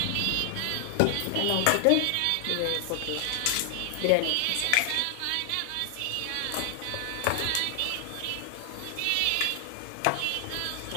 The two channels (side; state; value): both; different; correlation 0.00